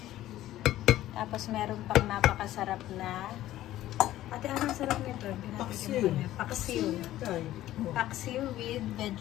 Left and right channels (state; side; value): quieter; right; 14.3 dB